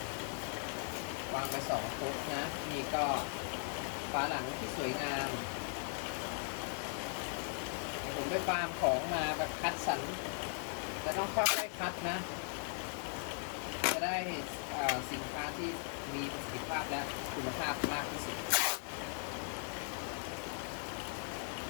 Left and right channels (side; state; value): right; silent; 52 dB below the other